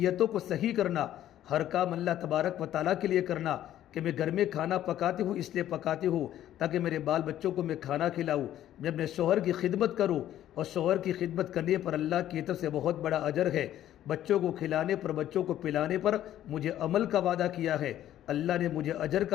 کو صحیح کرنا، ہر کام اللہ تبارک و تعالیٰ کے لیے کرنا، کہ میں گھر میں کھانا پکاتی ہوں اس لیے پکاتی ہوں تاکہ میرے بال بچوں کو میں کھانا کھلاؤں، میں اپنے شوہر کی خدمت کروں، اور شوہر کی خدمت کرنے پر اللہ کی طرف سے بہت بڑا اجر ہے، بچوں کو کھلانے پر بچوں کو پلانے پر مجھے عمل کا وعدہ کیا ہے، اللہ نے مجھے اجر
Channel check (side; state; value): right; quieter; 12.2 dB